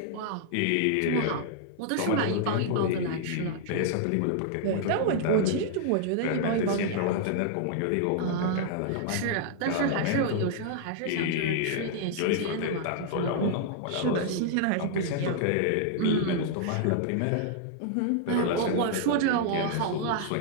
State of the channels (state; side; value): different; both; correlation -0.01